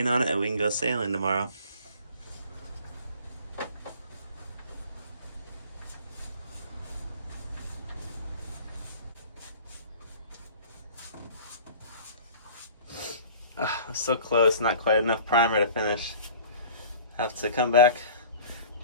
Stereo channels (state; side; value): inverted; both; correlation -0.45